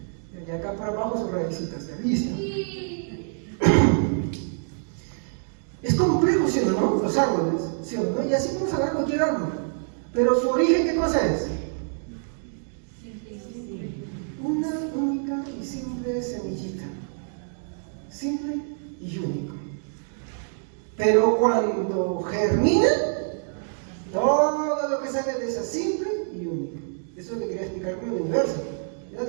Y acá para abajo sus raícitas, ¿ya? Listo. Es complejo, ¿sí o no? Los árboles, ¿sí o no? Y así podemos hablar de cualquier árbol. Pero su origen, ¿qué cosa es? Una única y simple semillita. Simple y único. Pero cuando germina, todo lo que sale de esa simple y única. Eso es lo que quería explicar con el universo. Ya,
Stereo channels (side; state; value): left; silent; digital silence